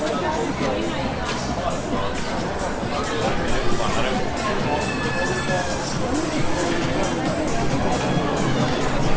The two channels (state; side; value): identical; both; correlation 1.00